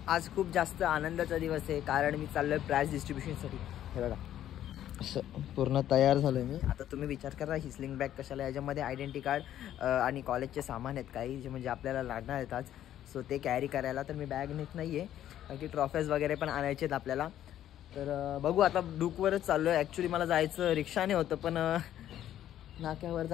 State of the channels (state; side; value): quieter; right; 11.7 dB